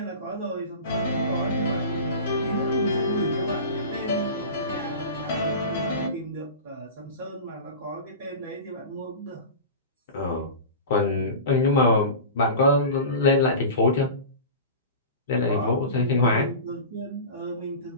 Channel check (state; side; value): inverted; both; correlation -0.32